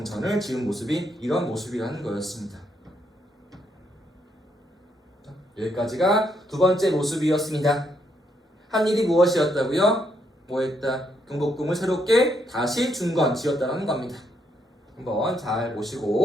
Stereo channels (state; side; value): normal; both; correlation 0.75